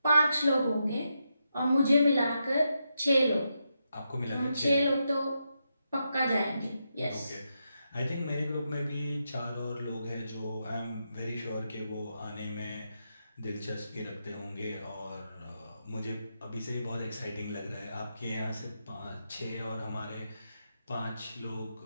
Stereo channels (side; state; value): both; inverted; correlation -0.85